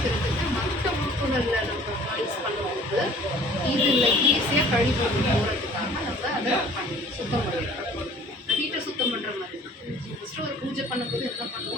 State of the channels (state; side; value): normal; both; correlation 0.52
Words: மற்ற உறுப்புகளில் நம்ம யூஸ் பண்ணும்போது இதில் ஈஸியாக கழிவு போகிறதுக்காக நம்ம அதை பண்ணி சுத்தம் பண்ணிடுறோம். வீட்டை சுத்தம் பண்ணுற மாதிரி தான். ஃபஸ்ட்டு ஒரு பூஜை பண்ணும்போது என்ன